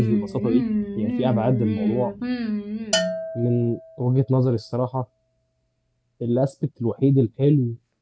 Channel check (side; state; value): both; identical; correlation 1.00